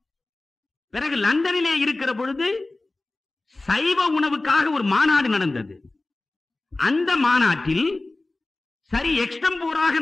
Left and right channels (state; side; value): quieter; right; 3.0 dB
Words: பிறகு லண்டனிலே இருக்கிற பொழுது சைவ உணவுக்காக ஒரு மாநாடு நடந்தது. அந்த மாநாட்டில் சரி எக்ஸ்டம்போராக